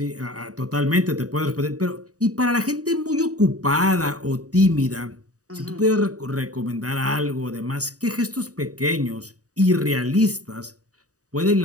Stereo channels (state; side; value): late; left; 0.66 ms